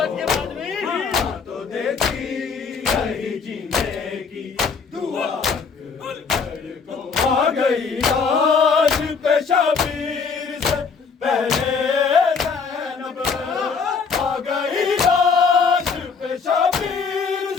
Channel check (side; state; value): right; quieter; 5.4 dB